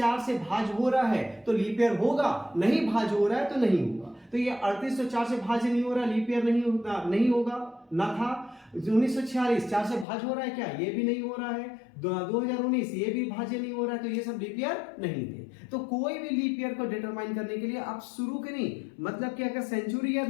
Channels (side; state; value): right; drops out; at 10.1 s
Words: से भाज हो रहा है तो लीप ईयर होगा, नहीं भाज हो रहा है तो नहीं होगा। तो ये 38 तो 4 से भाज नहीं हो रहा, लीप ईयर नहीं होगा, ना था। 1946 4 से भाज हो रहा है क्या, ये भी नहीं हो रहा है। 2019 ये भी भाज्य नहीं हो रहा है, तो ये सब लीप ईयर नहीं थे। तो कोई भी लीप ईयर को डिटरमाइन करने के लिए आप शुरू के नहीं, मतलब कि अगर सेंचुरी ईयर